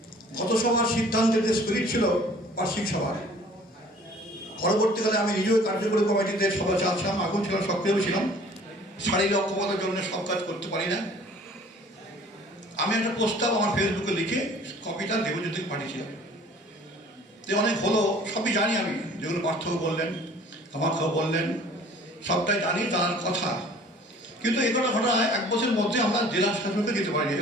গত সভার সিদ্ধান্তের যে স্পিরিট ছিল বার্ষিক সভায়, পরবর্তীকালে আমি নিজেও কার্যকরী কমিটিতে সভা চাচ্ছিলাম, এখন ছিলাম, সক্রিয় ছিলাম। শারীরিক অক্ষমতার জন্য সব কাজ করতে পারি না। আমি একটা প্রস্তাব আমার ফেসবুকে লিখে কপিটা দেবজ্যোতিকে পাঠিয়েছিলাম। যে অনেক হলো, সবই জানি আমি, যেগুলো পার্থক্য বললেন, আমাকেও বললেন, সবটাই জানি, জানার কথা। কিন্তু এই কটা ঘটনা 1 বছরের মধ্যে আমরা জেলা শাসনকে যেতে পারিনি,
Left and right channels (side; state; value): both; normal; correlation 0.51